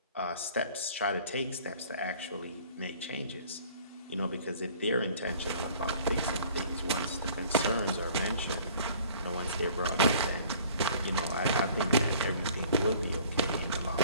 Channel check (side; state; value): both; inverted; correlation -0.51